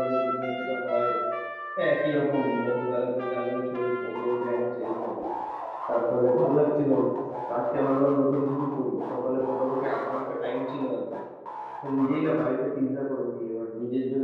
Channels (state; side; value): identical; both; correlation 1.00